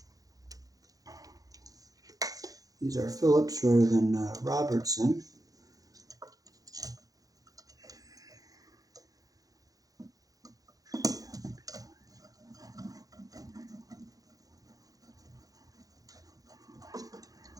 These are Phillips rather than Robertson.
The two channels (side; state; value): left; late; 0.17 ms